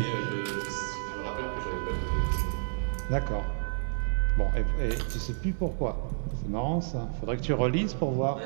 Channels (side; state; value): left; silent; 55 dB below the other